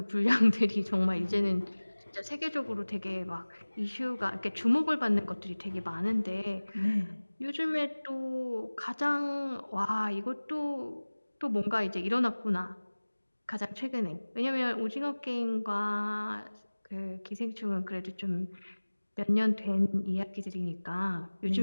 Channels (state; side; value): inverted; both; correlation -1.00